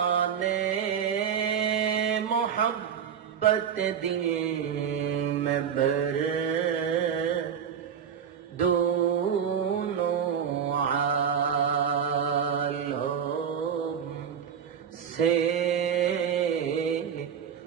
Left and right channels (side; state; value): left; quieter; 7.8 dB